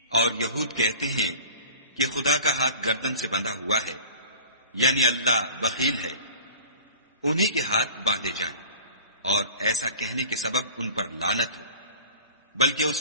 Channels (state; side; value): inverted; both; correlation -0.41